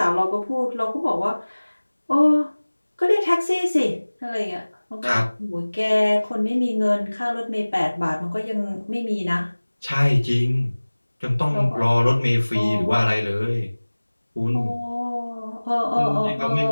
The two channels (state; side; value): inverted; both; correlation -1.00